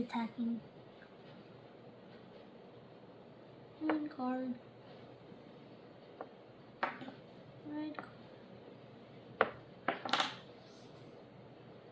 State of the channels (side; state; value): both; identical; correlation 1.00